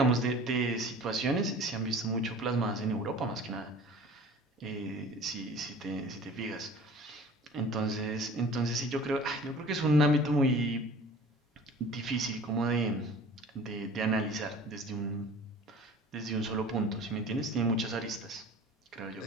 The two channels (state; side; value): normal; both; correlation 0.44